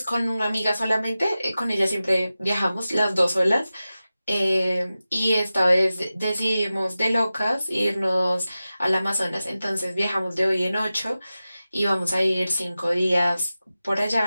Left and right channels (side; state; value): both; inverted; correlation -0.94